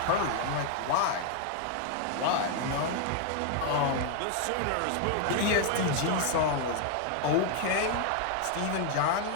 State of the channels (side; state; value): both; different; correlation 0.00